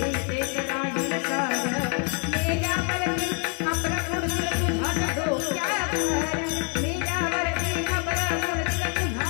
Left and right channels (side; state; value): right; quieter; 34.7 dB